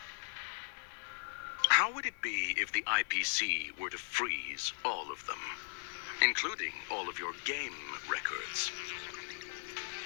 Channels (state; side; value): silent; right; digital silence